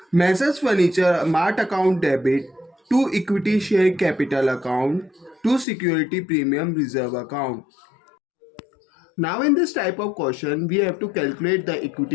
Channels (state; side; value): drops out; right; at 5.7 s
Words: Messrs Furniture Mart account debit to equity share capital account to security premium reserve account. Now in this type of question we have to calculate the